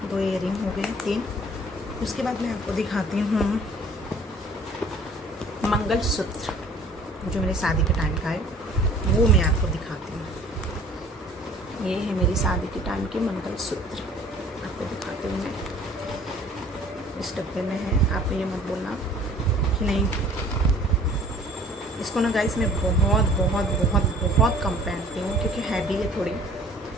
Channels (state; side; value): normal; both; correlation 0.52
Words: दो इयररिंग हो गए, 3। उसके बाद मैं आपको दिखाती हूँ मंगलसूत्र, जो मेरे शादी के टाइम का है, वो मैं आपको दिखाती हूँ। ये है मेरी शादी के टाइम के मंगलसूत्र, आपको दिखाती हूँ मैं। इस डब्बे में है, आप ये मत बोलना कि नहीं। इसको ना गाइस मैं बहुत बहुत बहुत बहुत कम पहनती हूँ क्योंकि हैवी है थोड़ी,